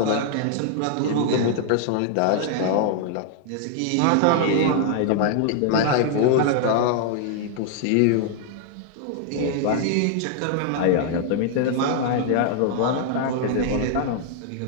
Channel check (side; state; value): both; different; correlation 0.00